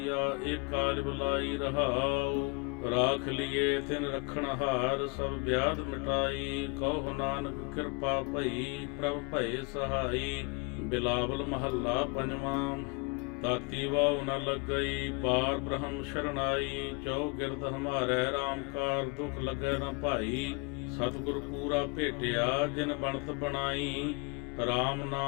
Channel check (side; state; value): right; quieter; 30.9 dB